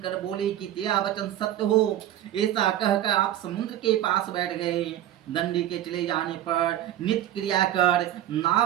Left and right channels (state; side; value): quieter; left; 12.3 dB